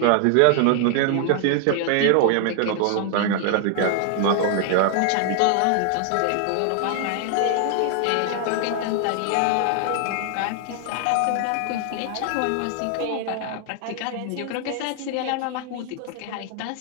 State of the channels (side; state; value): both; different; correlation 0.00